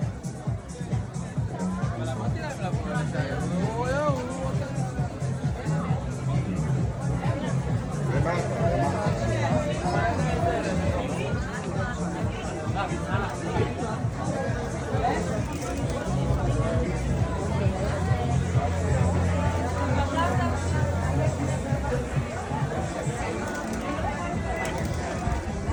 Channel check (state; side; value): identical; both; correlation 1.00